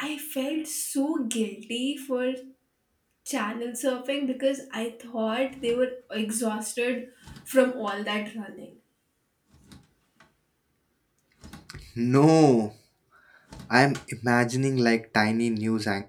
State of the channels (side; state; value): both; identical; correlation 1.00